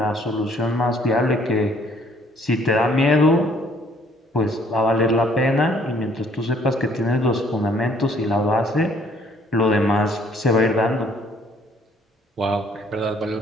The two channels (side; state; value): both; normal; correlation 0.62